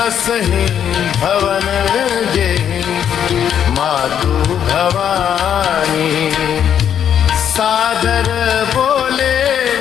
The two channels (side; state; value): right; quieter; 9.0 dB